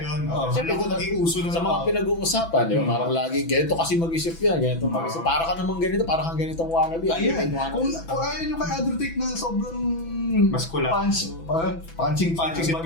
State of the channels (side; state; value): right; late; 6.0 ms